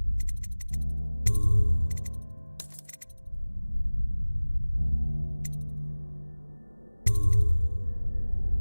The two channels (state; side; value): inverted; both; correlation -1.00